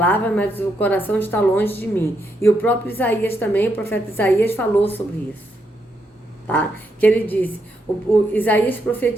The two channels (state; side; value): normal; both; correlation 0.79